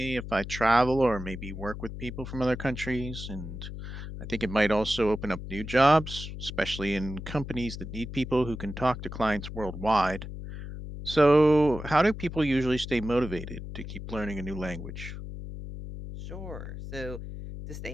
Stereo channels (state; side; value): noise; left; hum, 9 dB below the sound